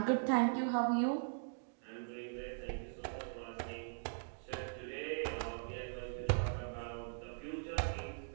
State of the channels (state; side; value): silent; left; digital silence